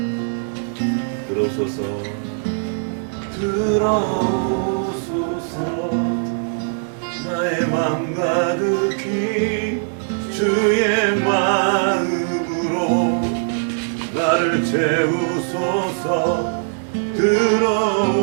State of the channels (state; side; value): silent; left; digital silence